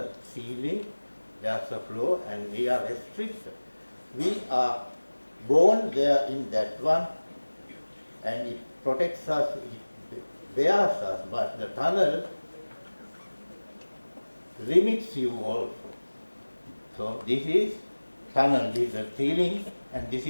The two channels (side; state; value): both; inverted; correlation -1.00